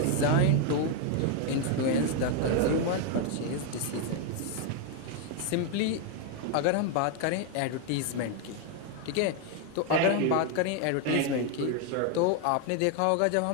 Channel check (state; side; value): different; both; correlation 0.01